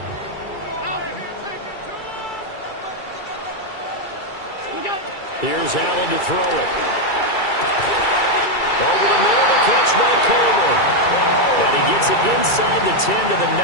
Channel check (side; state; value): right; late; 2.3 ms